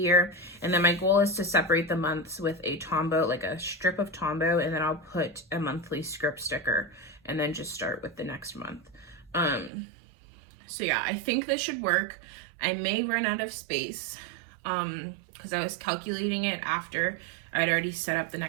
And then my goal is to separate the months with a Tombow, like a strip of Tombow, and then I'll put a monthly script sticker and then just start with the next month. So yeah, I think this should work. I may run out of space because I was calculating it after I'd already set up the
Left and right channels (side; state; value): left; drops out; at 9.7 s